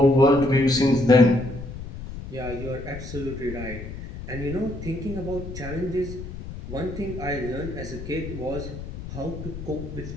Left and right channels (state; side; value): noise; left; rumble, 10 dB below the sound